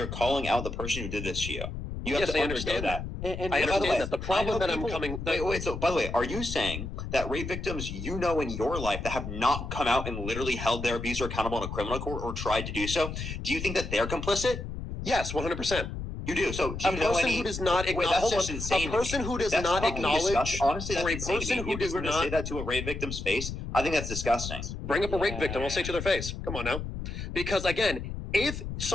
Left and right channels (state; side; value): noise; left; rumble, 6 dB below the sound